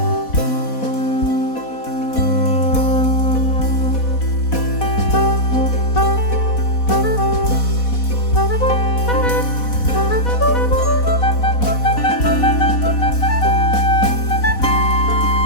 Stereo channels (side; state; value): right; late; 4.1 ms